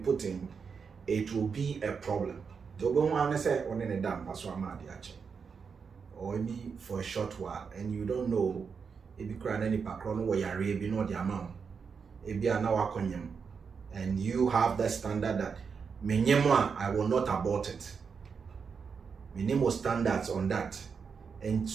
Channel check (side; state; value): left; quieter; 5.9 dB